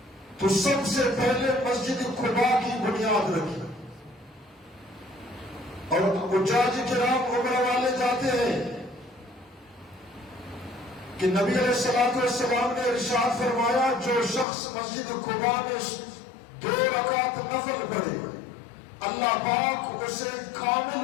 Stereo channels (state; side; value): drops out; right; at 14.5 s